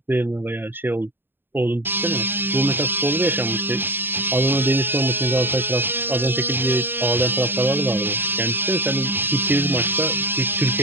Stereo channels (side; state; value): left; late; 0.098 ms